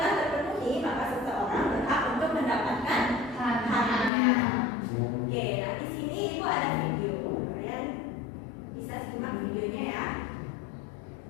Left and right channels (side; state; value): right; drops out; at 4.1 s